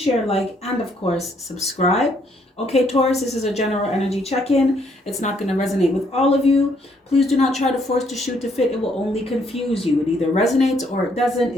like, and of course, subscribe. Okay, Taurus, this is a general energy check-in. It's not going to resonate with all of you. Please do not try to force to shoot to fit. It will only confuse you. It either resonates or it doesn't.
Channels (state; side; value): normal; both; correlation 0.69